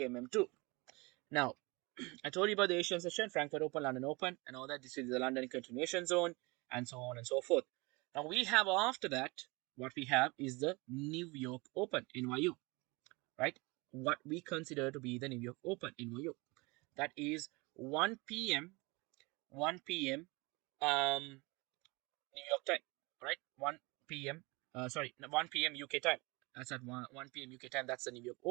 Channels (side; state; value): left; quieter; 25.9 dB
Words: MM2. Now, I told you about the Asian session, Frankfurt Open, London Open, and all that. This is the London continuation zone, and so on and so forth. Now, we have after that, what we have is the New York Open, NYU, right? What we consider to be the New York Open, NYU. That is 1 p.m., 1 p.m., New York time, right? 1 p.m., sorry, 1 p.m. UK time. That's at 1 p.m. UK time. That's the New York